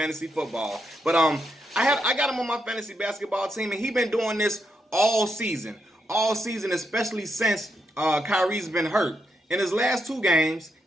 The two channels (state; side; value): normal; both; correlation 0.81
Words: football. But I got him on my fantasy basketball team, and he been doing this all season, especially since Kyrie's been hurt. In his last 2 games,